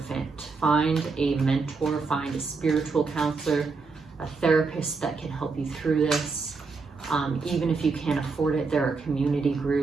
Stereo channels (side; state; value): left; quieter; 4.4 dB